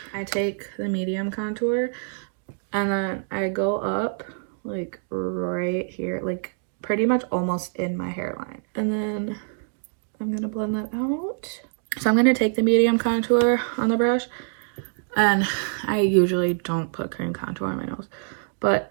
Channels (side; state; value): left; silent; digital silence